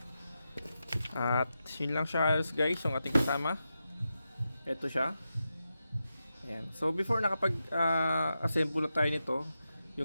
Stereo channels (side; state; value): both; inverted; correlation -0.89